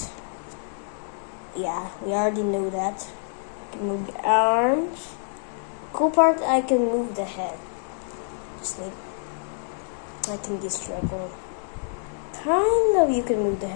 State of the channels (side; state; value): right; silent; digital silence